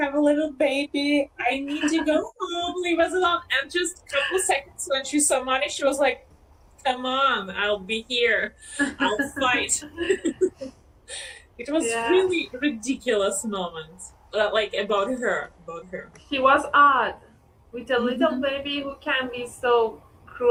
have a little baby, I need to go home, leave us alone." And just a couple seconds when she saw money, she was like, "Come on, I'll be here, I'll fight." It was Yeah. really ridiculous moment, like about her. He was odd with a little baby who can be so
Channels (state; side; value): identical; both; correlation 1.00